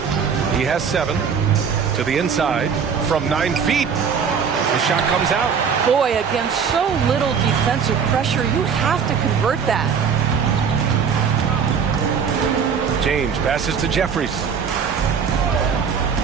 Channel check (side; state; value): left; quieter; 6.6 dB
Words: He has 7. To the inside from 9 feet. The shot comes out. Boy, against so little defensive pressure, you have to convert that. James passes to Jeffries.